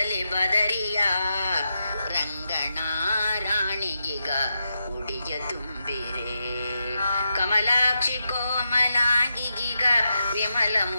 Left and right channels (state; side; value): inverted; both; correlation -0.87